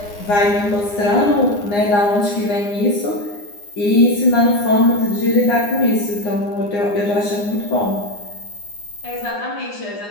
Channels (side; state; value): right; late; 9.8 ms